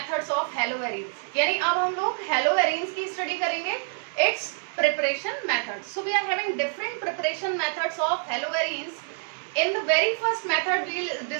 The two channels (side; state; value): left; silent; digital silence